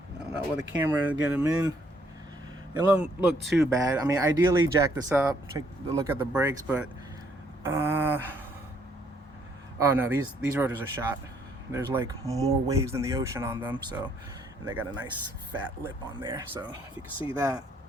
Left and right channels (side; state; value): both; normal; correlation 0.68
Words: I don't know where the camera will get them in. It don't look too bad. I mean, ideally jack this up, take a look at the brakes, but oh no, these rotors are shot. There's like more waves than the ocean on them, so, and they got a nice fat lip on there. So if you can see that,